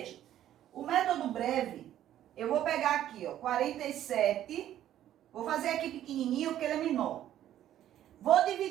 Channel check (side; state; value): left; quieter; 11.9 dB